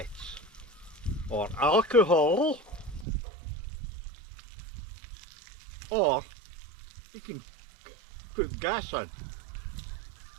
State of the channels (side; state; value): left; drops out; at 3.1 s